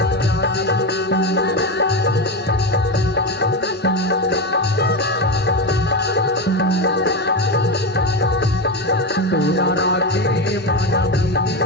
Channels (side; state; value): both; normal; correlation 0.15